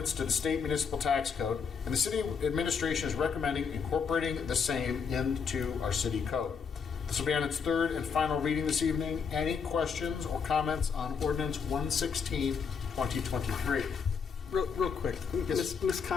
to the state municipal tax code, and the city administration is recommending incorporating the same into our city code. This will be on its third and final reading this evening. Any questions or comments on Ordinance 116, 2023? Real quick, Yes. Ms.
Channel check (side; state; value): right; quieter; 6.1 dB